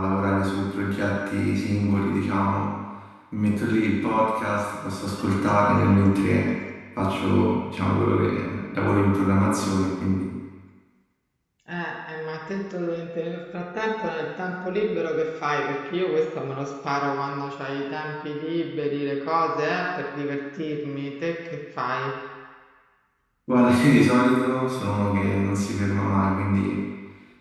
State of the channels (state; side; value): identical; both; correlation 1.00